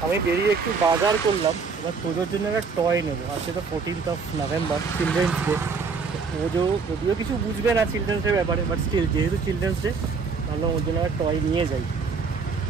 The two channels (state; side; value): quieter; left; 5.0 dB